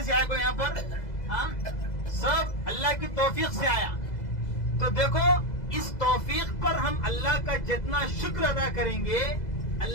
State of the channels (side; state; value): right; late; 2.0 ms